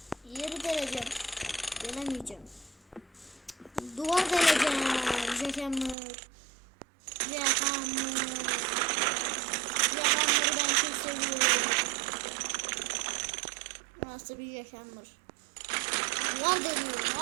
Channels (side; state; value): left; drops out; at 6.0 s